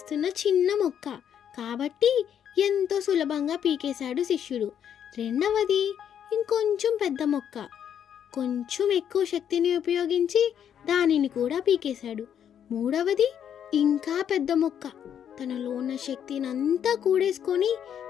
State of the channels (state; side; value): quieter; right; 9.0 dB